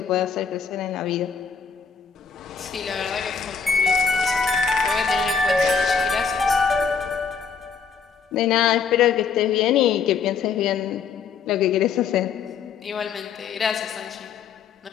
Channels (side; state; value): right; quieter; 6.1 dB